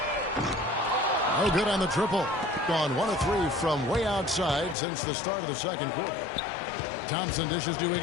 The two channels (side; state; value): right; drops out; at 4.8 s